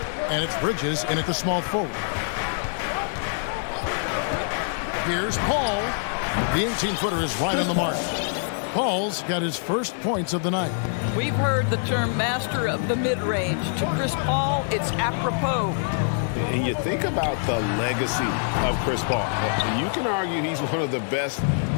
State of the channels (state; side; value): silent; right; digital silence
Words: And it's Bridges in at the small forward. Here's Paul. The 18-footer is right on the mark. Paul's got his first points of the night. We've heard the term master of the mid-range. To Chris Paul, it's apropos. And you think about the legacy of Chris Paul. You can argue he's one of the best